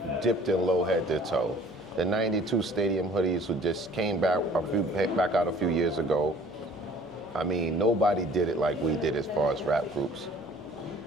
dipped in low head to toe. The 92 stadium hoodies who just came back out a few years ago. I mean, nobody did it like we did as far as rap groups.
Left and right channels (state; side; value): noise; right; rumble, 29 dB below the sound